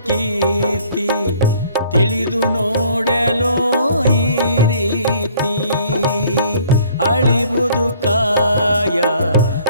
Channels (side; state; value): both; inverted; correlation -0.58